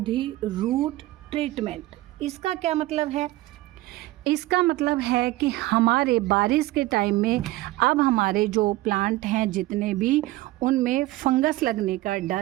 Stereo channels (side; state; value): left; quieter; 17.8 dB